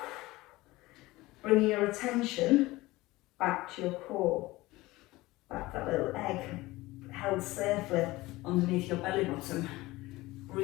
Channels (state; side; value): quieter; right; 19.6 dB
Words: Bring your attention back to your core, back that little egg held safely underneath your belly button.